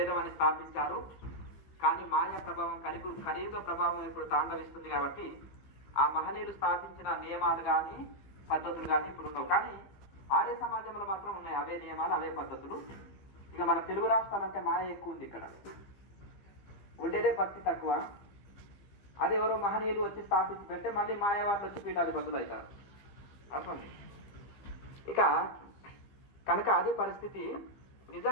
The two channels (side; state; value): right; late; 15 ms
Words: అని స్థాపించారు. కానీ మాయా ప్రభావం కలియుగ ప్రభావం ఇప్పుడు తాండవిస్తుంది కాబట్టి ఆ మహనీయులు స్థాపించిన నియమాలు కానీ పద్ధతులు కానీ ఇప్పుడు ఉండవు. కానీ ఆర్య సమాజంలో మాత్రం ఉన్నాయి అవే నియమాలు, అవే పద్ధతులు. ఇక మన తెలుగు రాష్ట్రాలంటే మాయ ఎక్కువ ఉంది, ఇక్కడ ఉండేదే భక్తి తక్కువ. అది ఎవరో మహనీయులు వచ్చి స్థాపించి పెడితే మళ్ళీ మాయవాళ్ళు వచ్చి పీఠాధిపతులు అవుతారు. అర్థం. ఇక కనుక అదే పరిస్థితి.